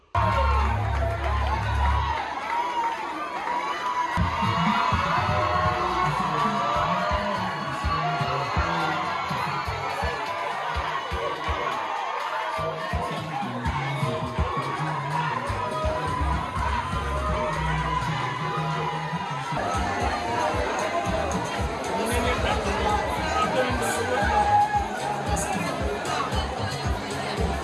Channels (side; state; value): both; identical; correlation 1.00